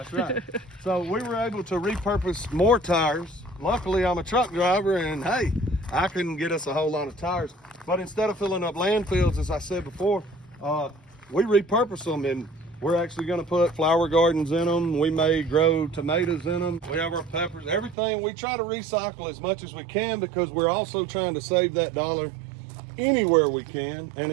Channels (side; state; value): left; drops out; at 17.9 s